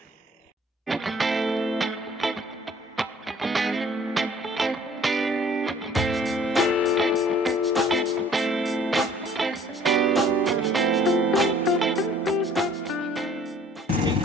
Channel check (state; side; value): normal; both; correlation 0.55